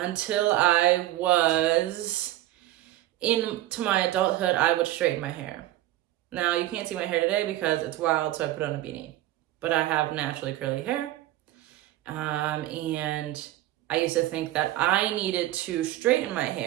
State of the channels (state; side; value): quieter; left; 15.1 dB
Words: I was into my adulthood, I would straighten my hair. Now, you can't see my hair today because it's wild, so I put on a beanie. But I have naturally curly hair. And I used to think that I needed to straighten my